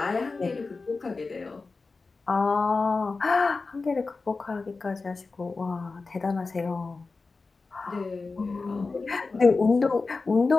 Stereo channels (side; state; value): right; quieter; 4.0 dB